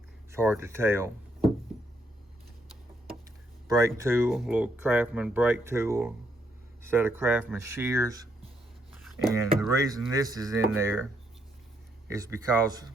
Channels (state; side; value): normal; both; correlation 0.75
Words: it's hard to tell. Brake tool, little Craftman brake tool, set of Craftman shears. And the reason this is in there is because